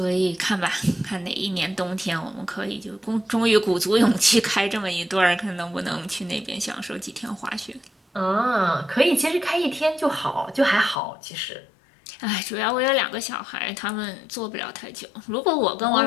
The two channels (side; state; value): right; drops out; at 11.0 s